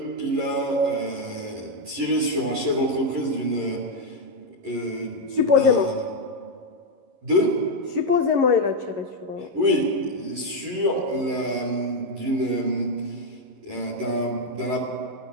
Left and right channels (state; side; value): late; left; 11 ms